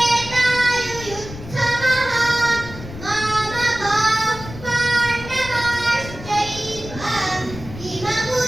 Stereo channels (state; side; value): noise; left; rumble, 13 dB below the sound